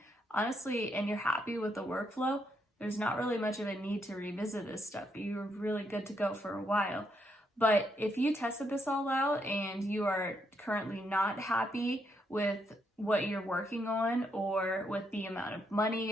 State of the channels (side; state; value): both; normal; correlation 0.77